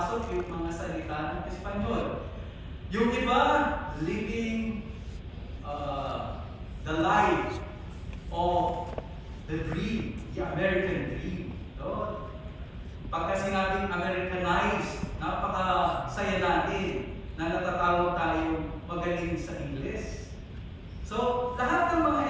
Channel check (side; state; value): both; identical; correlation 1.00